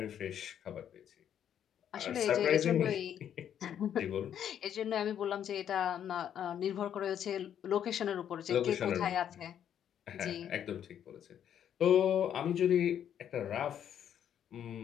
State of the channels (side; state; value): right; quieter; 9.5 dB